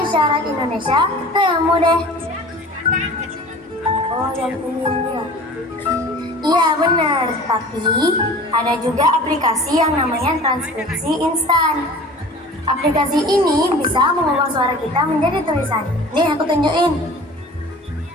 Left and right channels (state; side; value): normal; both; correlation 0.42